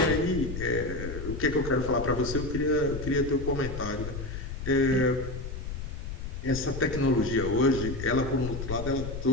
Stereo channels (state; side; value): noise; left; rumble, 7 dB below the sound